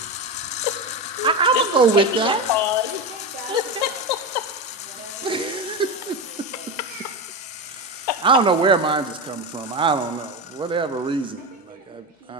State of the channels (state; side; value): normal; both; correlation 0.18